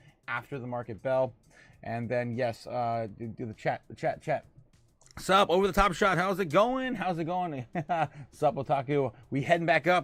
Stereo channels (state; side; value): identical; both; correlation 1.00